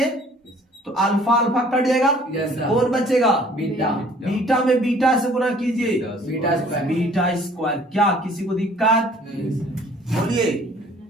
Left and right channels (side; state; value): both; normal; correlation 0.55